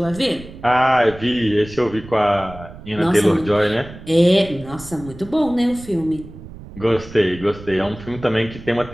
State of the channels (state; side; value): noise; right; rumble, 16 dB below the sound